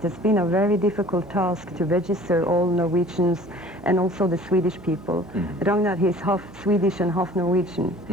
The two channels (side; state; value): right; noise; hum, 20 dB below the sound